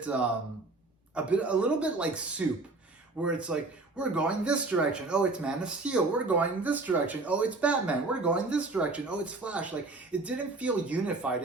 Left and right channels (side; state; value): left; quieter; 3.3 dB